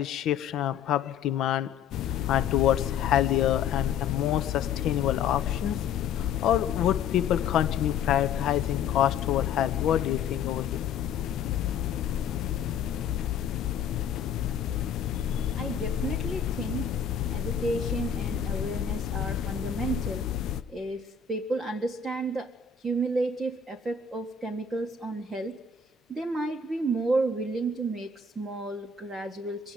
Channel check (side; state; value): right; quieter; 6.4 dB